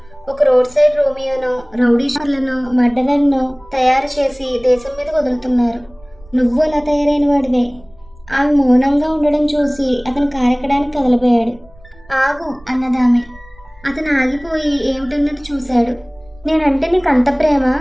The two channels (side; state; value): right; noise; rumble, 25 dB below the sound